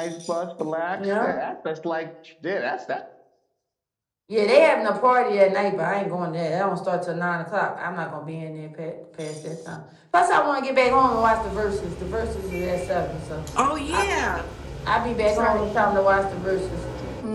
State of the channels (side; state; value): both; identical; correlation 1.00